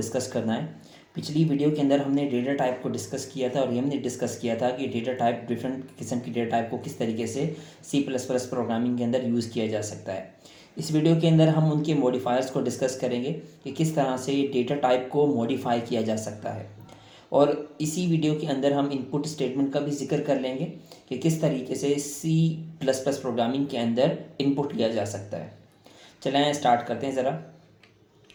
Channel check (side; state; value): both; identical; correlation 1.00